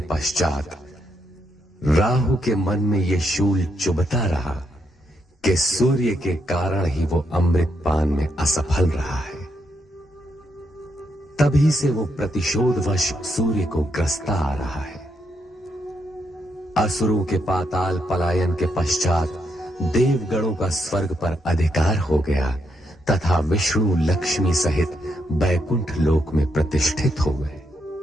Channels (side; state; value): both; normal; correlation 0.79